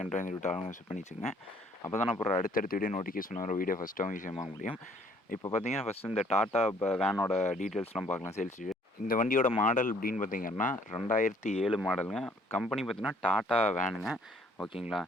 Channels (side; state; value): both; normal; correlation 0.60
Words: கண்ட்ராய் விட்டு ஆளுங்க பண்ணி வச்சுங்க. அப்போ தான் அப்புறம் அடுத்தடுத்த வீடியோ நோட்டிஃபிகேஷன் வர வீடியோ ஃபஸ்ட்டாகவும் ஈஸியாக வாங்க முடியும். இப்போ பார்த்தீங்கன்னா ஃபஸ்ட்டு இந்த டாட்டா வேனோட டீட்டெயில்ஸ்லாம் பார்க்கலாம் சேல்ஸ். இந்த வண்டியோட மாடல் அப்படின்னு பார்த்தீங்கன்னா 2007 மாடலுங்க. கம்பெனி பார்த்தீங்கன்னா டாட்டா வேனுங்க. ஓகேங்களா.